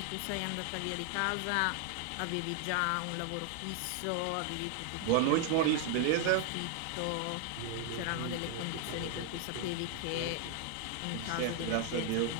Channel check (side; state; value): both; different; correlation 0.00